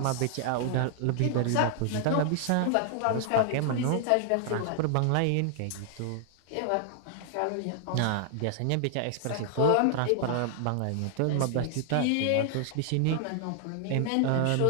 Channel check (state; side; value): different; both; correlation 0.00